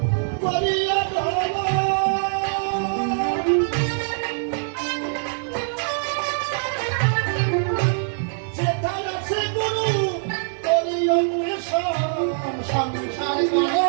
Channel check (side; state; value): left; silent; digital silence